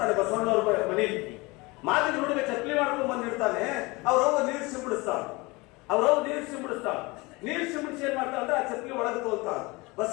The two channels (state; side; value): quieter; right; 24.3 dB